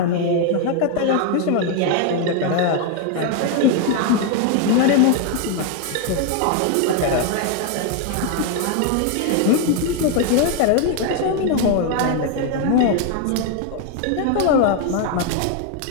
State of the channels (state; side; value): different; both; correlation 0.01